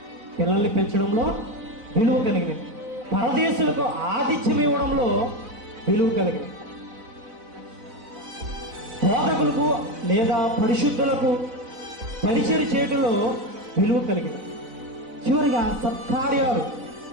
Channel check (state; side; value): late; left; 4.0 ms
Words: పిల్లల్ని పెంచడంలో విలువ కలిగినది. పరదేశులకు ఆతిథ్యం ఇవ్వడంలో విలువ కలిగినది. బోధకులకు లేదా పరిశుద్ధులకు పరిచయం చేయడంలో విలువ కలిగినది. చివరిగా సత్కార్యాలు